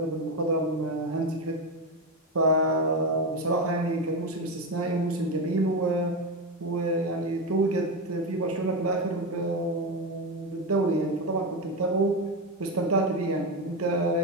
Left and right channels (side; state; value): both; normal; correlation 0.14